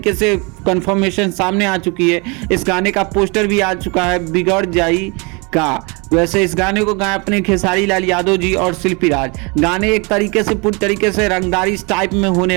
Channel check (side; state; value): left; quieter; 29.9 dB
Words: से कंफर्मेशन सामने आ चुकी है। इस गाने का पोस्टर भी आ चुका है बिगड़ जाई का। वैसे इस गाने को गाए अपने खेसारी लाल यादव जी और शिल्पी राज। गाने एक तरीके से पूरी तरीके से रंगदारी टाइप में